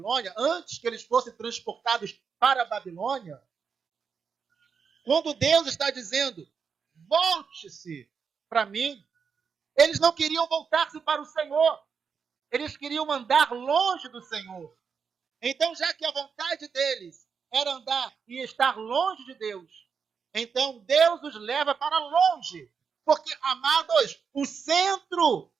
antes que eles fossem transportados para a Babilônia, quando Deus está dizendo: volte-se para mim, eles não queriam voltar-se para o Senhor. Eles queriam andar longe do Senhor. Então, já que a vontade deles era andar e estar longe de Deus, então Deus os leva para longe. Porque, amados, o centro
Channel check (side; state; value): left; quieter; 6.1 dB